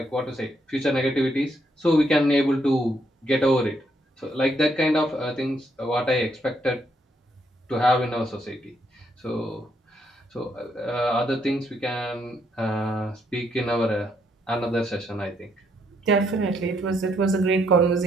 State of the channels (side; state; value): both; normal; correlation 0.74